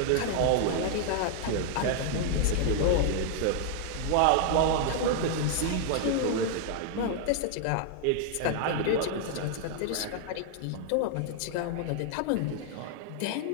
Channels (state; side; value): different; both; correlation 0.00